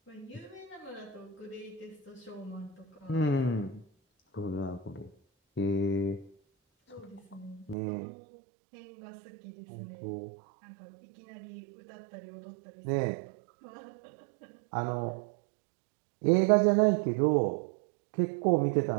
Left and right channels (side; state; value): left; drops out; at 7.8 s